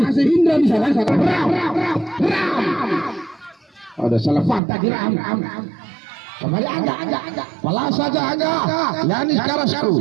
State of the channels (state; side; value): drops out; left; at 4.6 s